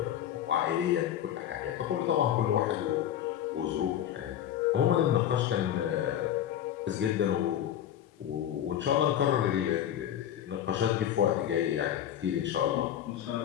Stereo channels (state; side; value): quieter; right; 10.7 dB